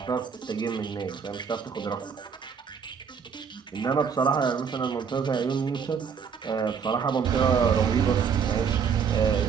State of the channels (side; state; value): left; quieter; 6.6 dB